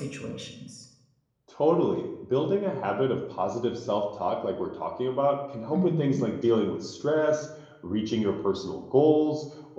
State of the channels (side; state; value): both; identical; correlation 1.00